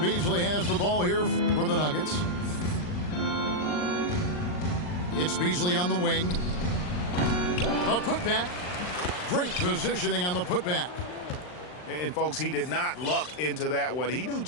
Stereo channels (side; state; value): right; late; 39 ms